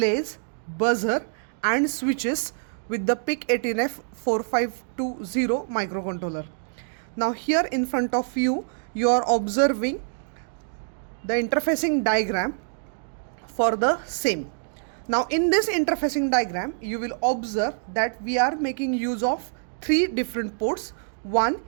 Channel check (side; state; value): left; silent; digital silence